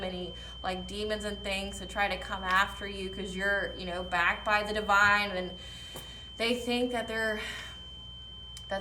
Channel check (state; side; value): identical; both; correlation 1.00